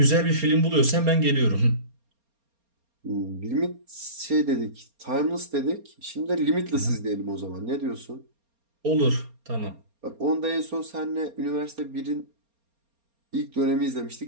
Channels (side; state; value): left; late; 4.3 ms